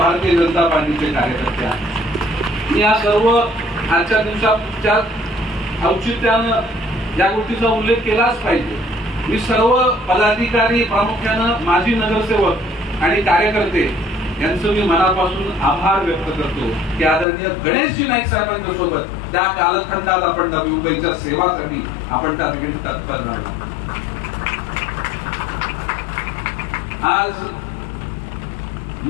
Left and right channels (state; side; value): drops out; right; at 17.2 s